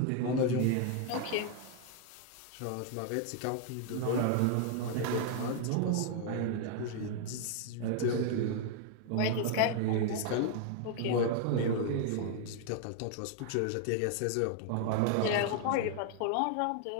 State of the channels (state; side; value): different; both; correlation 0.00